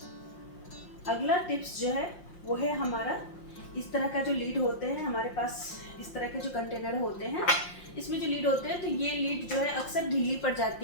अगला टिप्स जो है वो है हमारा इस तरह का जो लीड होते हैं हमारे पास, इस तरह के जो कंटेनर होते हैं, इसमें जो लीड होते हैं, तो ये लीड जो है अक्सर ढीली पड़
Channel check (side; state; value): right; late; 5.7 ms